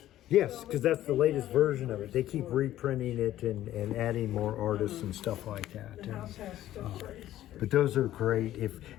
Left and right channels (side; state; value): right; quieter; 13.3 dB